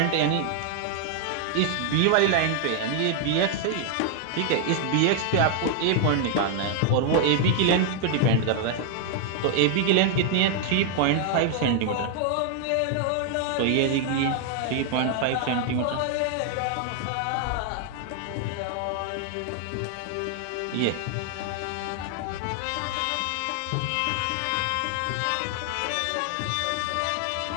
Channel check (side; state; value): both; different; correlation 0.00